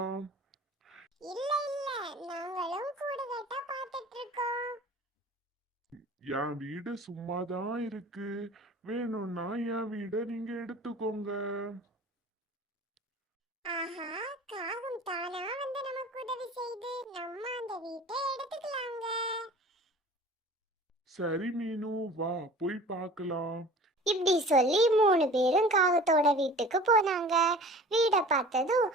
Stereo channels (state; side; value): normal; both; correlation 0.43